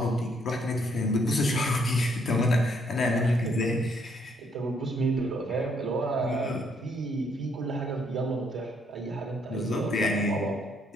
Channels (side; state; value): both; normal; correlation 0.70